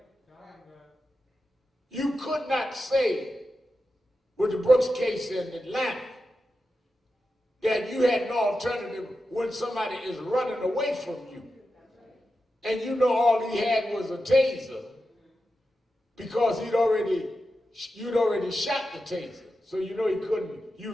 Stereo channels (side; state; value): both; normal; correlation 0.90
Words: You could not say with the Brooks case in Atlanta that you had no alternative when somebody is running away from you and you know all he had was a taser because you'd already shot the taser, so you know he couldn't